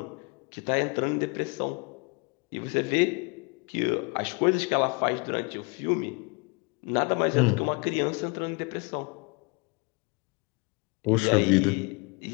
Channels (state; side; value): quieter; right; 30.8 dB